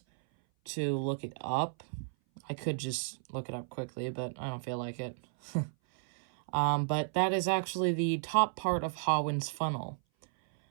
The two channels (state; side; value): silent; left; 56 dB below the other